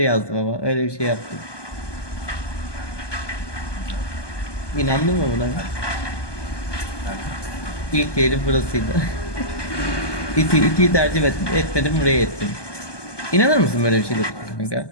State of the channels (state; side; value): late; right; 1.2 ms